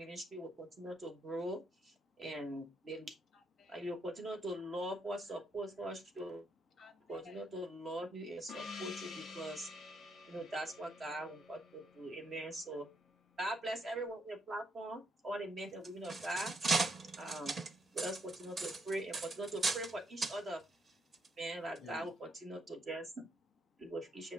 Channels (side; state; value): both; normal; correlation 0.76